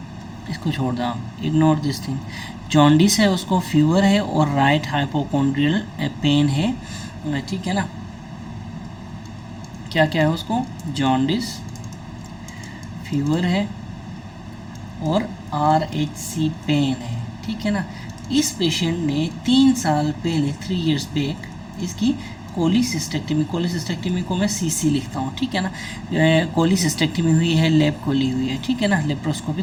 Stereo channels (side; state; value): both; identical; correlation 1.00